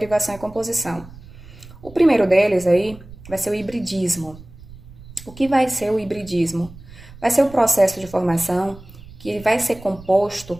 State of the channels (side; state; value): right; noise; rumble, 19 dB below the sound